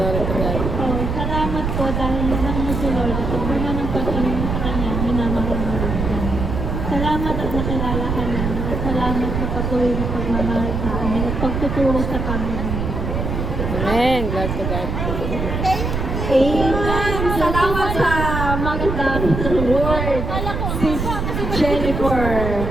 to God. So, salamat po dahil lang mo si Lord at naman ang pag-inom sa Kanya, minamahal mo rin siya. Salamat at nakilala ka na at salamat sa patuloy na pagmamahal sa amin at pagtuturo sa Panginoon. Amen, glory to God. Amen! Salamat sa magandang word, Sis Jennifer.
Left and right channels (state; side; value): noise; right; rumble, 2 dB below the sound